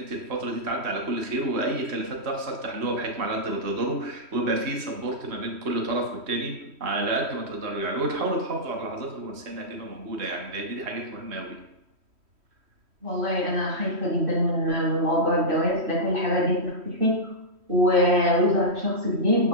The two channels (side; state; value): left; late; 3.1 ms